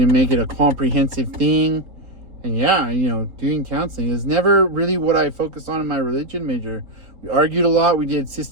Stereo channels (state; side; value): late; left; 3.6 ms